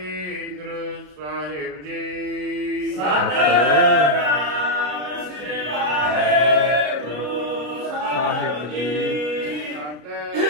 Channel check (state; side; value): late; left; 33 ms